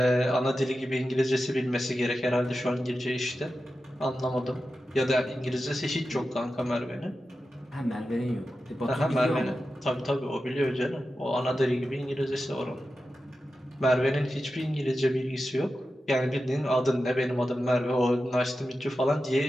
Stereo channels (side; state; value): both; normal; correlation 0.92